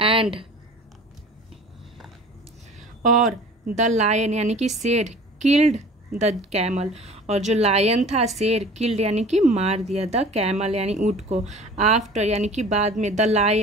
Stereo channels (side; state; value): both; normal; correlation 0.44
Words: एंड और द लायन यानी कि शेर, किल्ड द कैमल, और जो लायन था शेर, किल्ड यानी कि मार दिया, द कैमल यानी ऊंट को, आफ्टर यानी कि बाद में, द